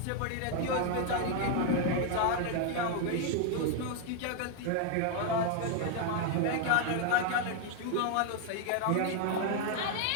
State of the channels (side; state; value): both; different; correlation 0.00